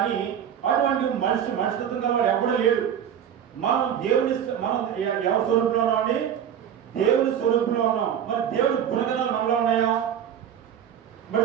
అని అటువంటి మనిషిత్వం కదా వాడు ఎవడో లేడు. మనం ఎవరి స్వరూపంలో ఉన్నాం అండి? దేవుడి స్వరూపంలో ఉన్నాం. మరి దేవుడి గుణగణాలు మనలో ఉన్నాయా?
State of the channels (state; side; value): quieter; left; 9.1 dB